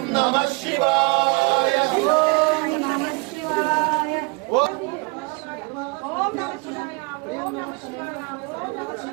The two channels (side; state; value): left; quieter; 29.4 dB